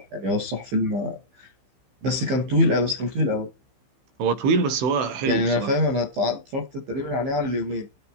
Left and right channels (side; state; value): left; late; 15 ms